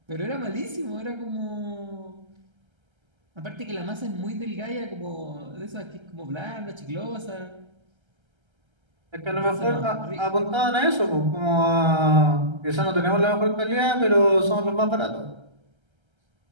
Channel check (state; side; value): late; left; 1.3 ms